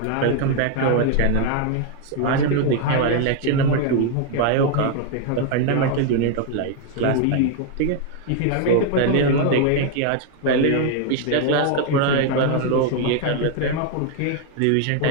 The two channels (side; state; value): both; different; correlation 0.00